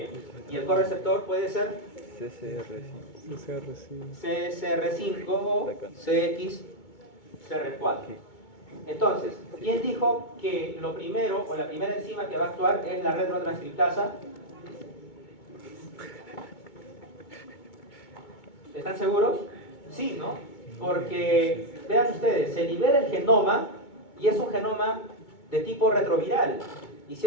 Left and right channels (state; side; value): late; right; 2.2 ms